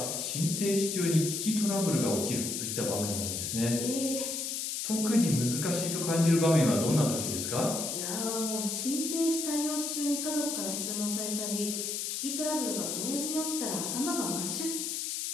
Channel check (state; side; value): noise; left; hiss, 2 dB below the sound